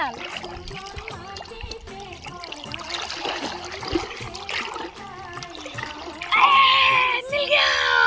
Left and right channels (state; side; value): identical; both; correlation 1.00